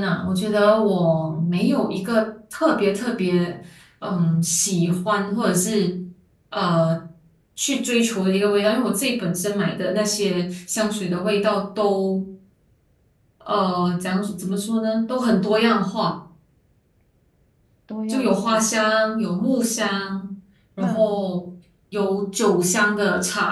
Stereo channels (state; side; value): identical; both; correlation 1.00